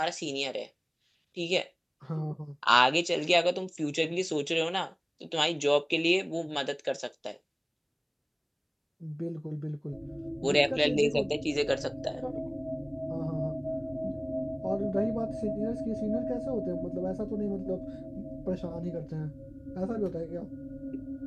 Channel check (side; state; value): both; identical; correlation 1.00